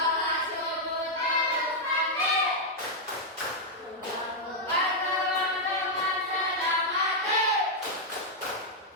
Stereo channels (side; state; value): both; normal; correlation -0.03